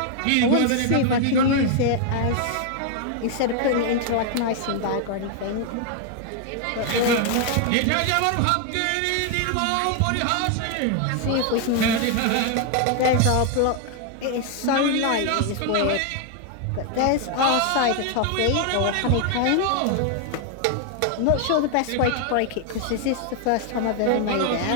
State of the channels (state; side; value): different; both; correlation 0.00